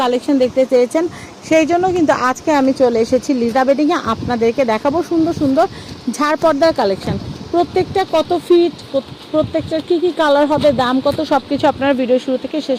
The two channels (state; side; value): identical; both; correlation 1.00